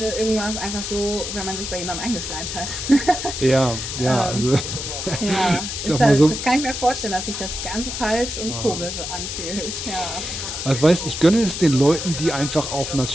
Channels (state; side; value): noise; left; hiss, 5 dB below the sound